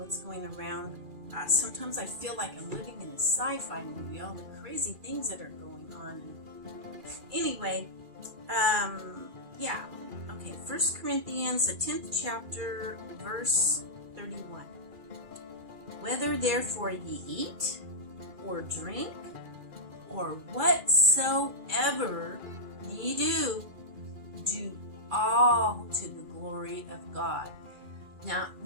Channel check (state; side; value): late; left; 2.4 ms